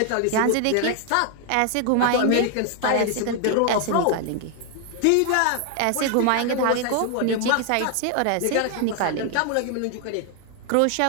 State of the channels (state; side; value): different; both; correlation 0.00